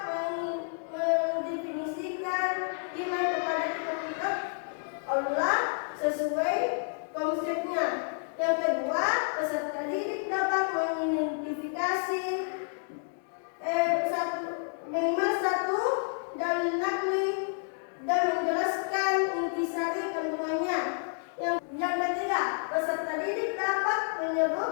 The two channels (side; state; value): right; silent; 58 dB below the other